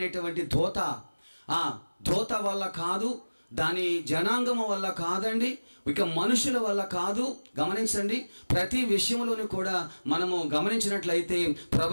దోత వల్ల కాదు, దాని జనాంగము వల్ల కాదండి, ఇక మనుషుల వల్ల కాదు. గమనించండి, ప్రతి విషయంలోనూ కూడా మనము గమనించినట్లయితే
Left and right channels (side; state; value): both; inverted; correlation -1.00